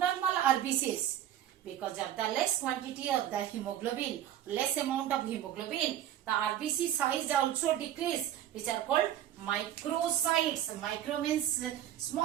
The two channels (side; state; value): left; quieter; 11.5 dB